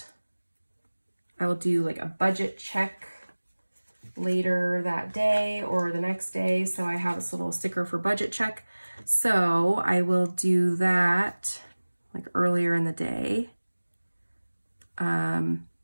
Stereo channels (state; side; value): inverted; both; correlation -1.00